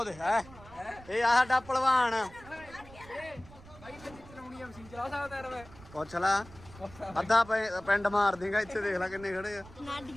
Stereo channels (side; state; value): right; noise; rumble, 20 dB below the sound